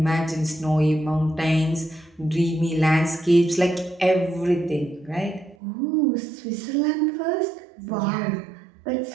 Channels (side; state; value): left; drops out; at 5.6 s